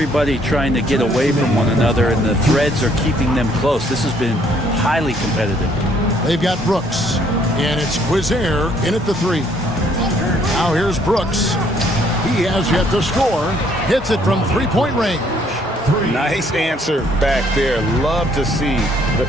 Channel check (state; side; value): normal; both; correlation 0.65